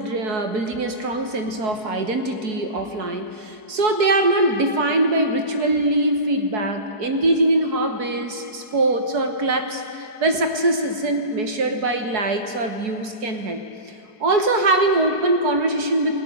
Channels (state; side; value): late; left; 4.7 ms